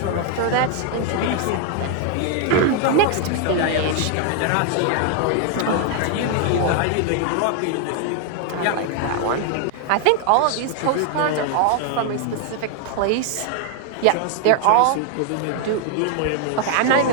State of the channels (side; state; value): both; different; correlation 0.00